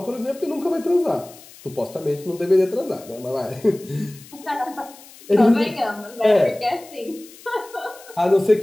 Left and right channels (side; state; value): left; noise; hiss, 21 dB below the sound